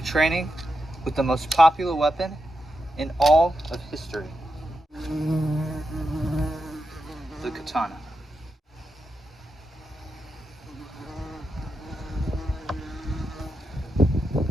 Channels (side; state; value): both; normal; correlation 0.86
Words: with the most popular weapon in all of history, the katana.